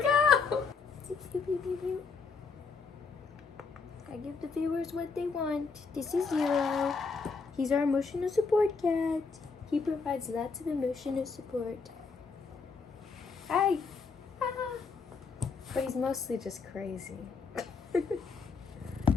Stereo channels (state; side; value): quieter; right; 4.9 dB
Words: I give the viewers what they want. This is Zero. He's our emotional support cat. He provides lots of emotional support. Hi. Ah. But he's mostly just crazy.